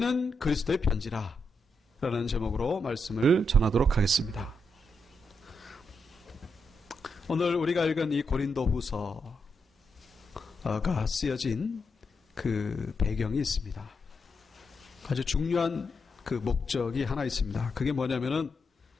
그리스도의 편지라 라는 제목으로 말씀을 전하도록 하겠습니다. 오늘 우리가 읽은 이 고린도 후서가 쓰여진 그 배경이 있습니다. 아주 중요한 그 목적이 하나 있습니다. 그게 뭐냐면은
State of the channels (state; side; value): normal; both; correlation 0.83